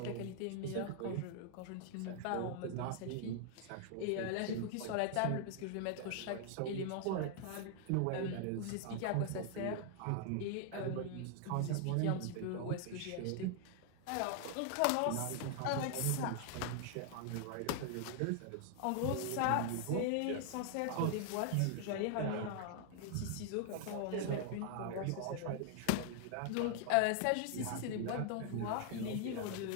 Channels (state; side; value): different; both; correlation 0.00